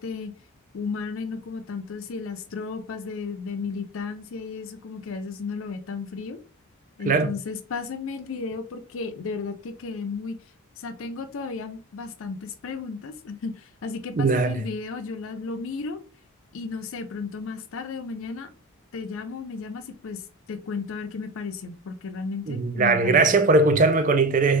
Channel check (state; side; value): normal; both; correlation 0.26